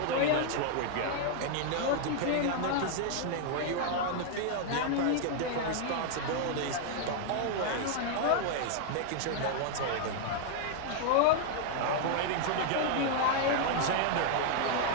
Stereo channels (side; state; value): both; different; correlation 0.00